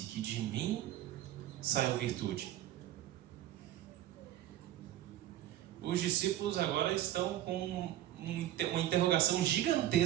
que de mim saiu virtude. Os discípulos agora estão com uma interrogação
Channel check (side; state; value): left; quieter; 13.5 dB